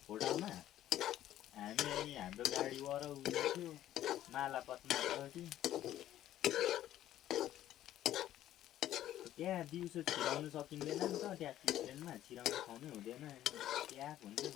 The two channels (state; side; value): quieter; right; 12.6 dB